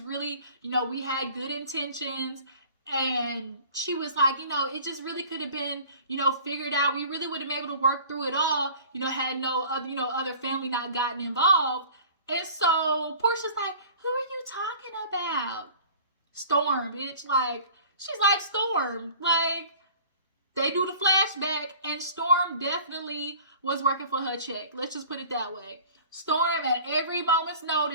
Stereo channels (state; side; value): inverted; both; correlation -0.46